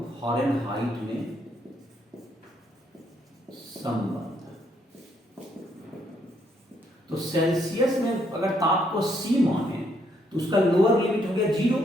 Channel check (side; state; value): both; normal; correlation 0.72